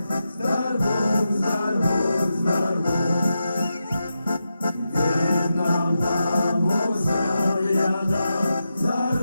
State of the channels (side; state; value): both; inverted; correlation -0.88